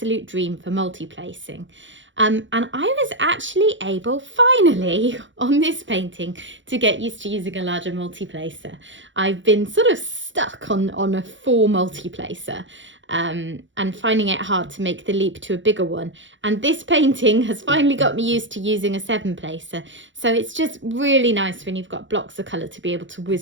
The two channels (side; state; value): left; late; 0.55 ms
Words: dream for multi-placing. And I was actually able, finally, on this painting, to get used to using a larger multi-placer. I've been sort of stuck on a 4 multi-placer and finding it hard to make the leap to a bigger one. And this painting has finally got me used to using a 7-placer. So it's just really nice when you've got blocks of colour to be able to